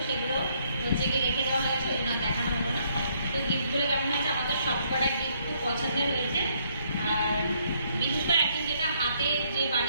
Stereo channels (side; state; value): both; inverted; correlation -0.69